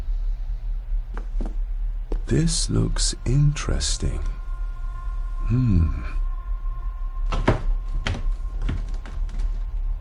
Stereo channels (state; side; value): identical; both; correlation 1.00